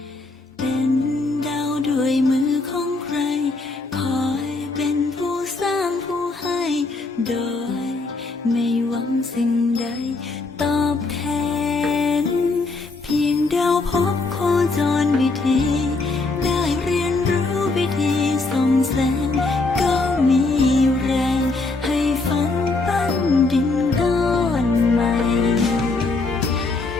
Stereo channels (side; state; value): right; quieter; 3.6 dB